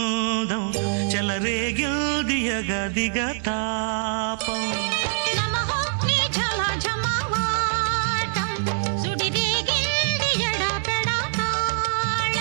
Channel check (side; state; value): left; silent; digital silence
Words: చెలరేగిల్దియగ దిగ తాపం